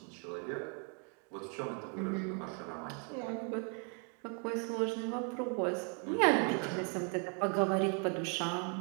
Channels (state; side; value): quieter; left; 39.0 dB